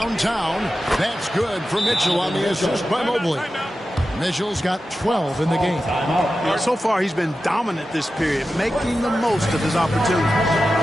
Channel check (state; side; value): normal; both; correlation 0.92